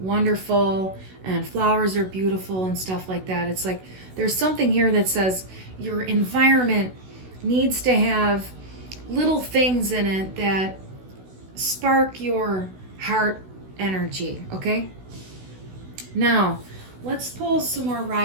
and flowers are beautiful and stuff like that. It's like there's something here that says your environment needs to have little things in it that spark your heart energy, okay? Now, let's pull some more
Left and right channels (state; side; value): late; left; 16 ms